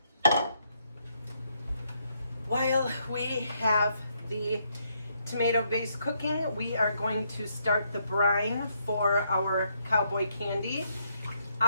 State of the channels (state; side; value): inverted; both; correlation -0.74